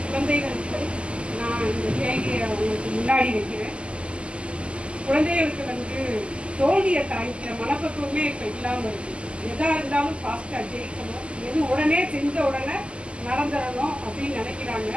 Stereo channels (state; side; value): late; left; 0.054 ms